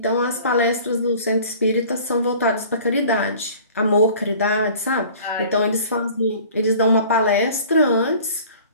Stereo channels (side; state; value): both; inverted; correlation -0.47